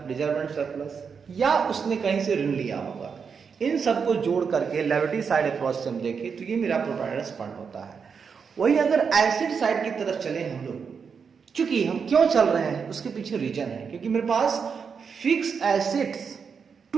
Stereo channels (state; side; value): quieter; left; 6.1 dB